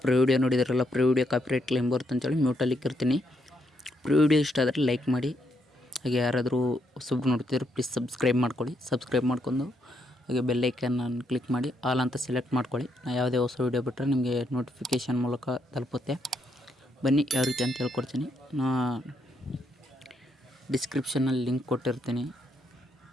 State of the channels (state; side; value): normal; both; correlation 0.76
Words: video ನೋಡಿದ್ರಲ್ಲ, video copyright claim ಬರುತ್ತೆ ಅಂತೇಳಿ ಮ್ಯೂಟಲ್ಲಿ ಇಕ್ಕಿರ್ತೀನಿ. ವಿಡಿಯೋ ಇಷ್ಟ ಆದರೆ ಲೈಕ್ ಮಾಡಿ. ಹಾಗೆ ಯಾರಾದರೂ ಹೊಸಬ್ರು ನೋಡ್ತಿದ್ರೆ ಪ್ಲೀಸ್ ಸಬ್ಸ್ಕ್ರೈಬ್ ಮಾಡ್ಕೊಳ್ಳಿ. ಸಬ್ಸ್ಕ್ರೈಬ್ ಮಾಡ್ಕೊಂಡು ಹಾಗೆ ಬೆಲ್ಲೈಕನ್ನು ಕ್ಲಿಕ್ ಮಾಡಿ ಆಲ್ ಅಂತ ಸೆಲೆಕ್ಟ್ ಮಾಡ್ಕೊಳ್ಳಿ. ನಾನು ಯಾವುದೇ ಹೊಸ ವೀಡಿಯೋ ಬಿಟ್ಟರೆ ನಿಮಗೆ ನೋಟಿಫಿಕೇಷನ್ ಮೂಲಕ ತಲುಪುತ್ತೆ. ಬನ್ನಿ ಯಾವ ರೀತಿ ಅಂತ ಹೇಳ್ಕೊಡ್ತೀನಿ. ಡಿಸ್ಕ್ರಿಪ್ಷನಲ್ಲಿ ಲಿಂಕ್ ಕೊಟ್ಟಿರ್ತೀನಿ.